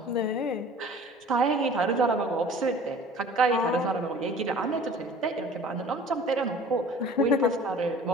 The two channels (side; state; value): both; normal; correlation 0.46